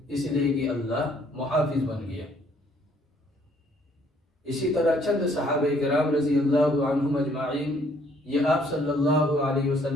اس لیے کہ اللہ محافظ بن گیا۔ اسی طرح چند صحابہ کرام رضی اللہ عنہم اجمعین یہ آپ صلی اللہ علیہ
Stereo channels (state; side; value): normal; both; correlation 0.64